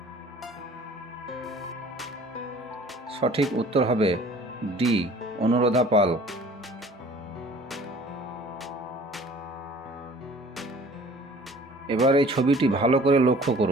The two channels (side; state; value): both; normal; correlation 0.49